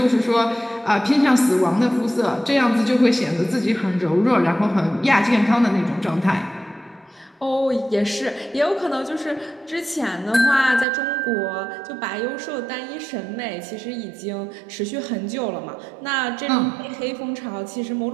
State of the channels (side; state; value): left; drops out; at 10.9 s